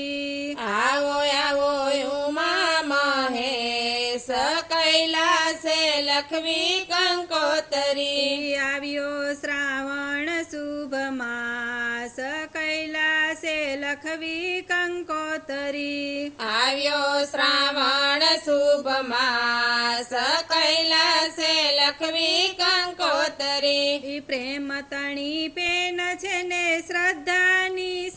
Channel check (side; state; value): both; identical; correlation 1.00